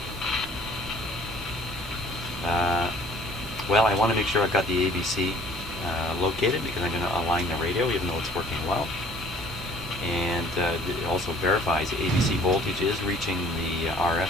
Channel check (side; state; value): both; normal; correlation 0.54